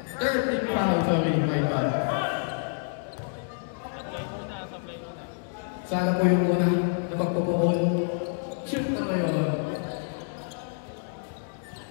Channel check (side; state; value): right; silent; digital silence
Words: Third team foul, sorry, my bad. Sana po yung una na pagpupuon. Shoot na ngayon.